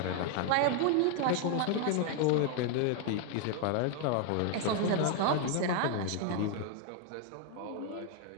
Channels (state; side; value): different; both; correlation 0.00